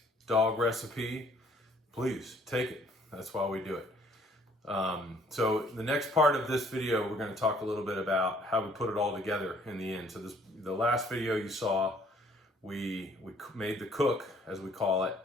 Dog recipe, please take it. That's why we do it. So the next part of this video, we're going to talk a little bit about how we put it all together in the end. So the last video you saw, we made the cook, as we call it,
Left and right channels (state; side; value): normal; both; correlation 0.60